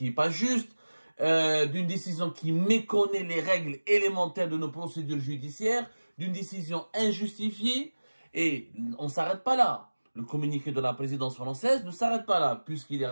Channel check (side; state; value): both; inverted; correlation -1.00